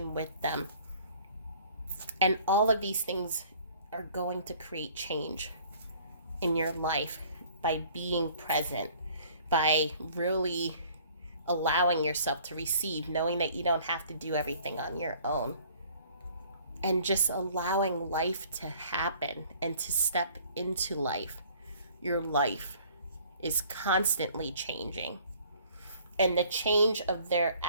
with them. And all of these things are going to create change in your life by being present, by really allowing yourself to receive, knowing that you don't have to do everything on your own, and just allowing life to happen and to step into life. Your life is constantly changing. And the change of their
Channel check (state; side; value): inverted; both; correlation -0.55